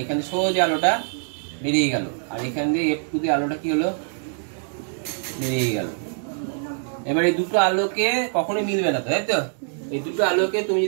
এখানে সোজা আলোটা বেরিয়ে গেল আর এখান দিয়ে F2 তে আলোটা কি হলো বেরিয়ে গেল এবার এই দুটো আলোকে কখনোই মিলবে না তাই তো এই দুটো আলোকে তুমি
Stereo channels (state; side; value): silent; left; 63 dB below the other